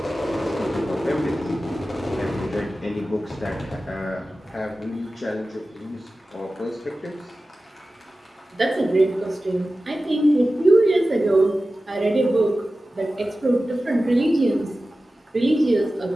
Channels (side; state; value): both; normal; correlation 0.95